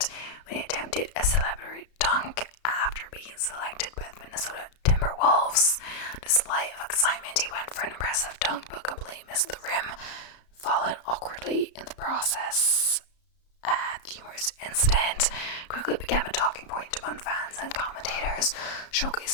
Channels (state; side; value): late; right; 34 ms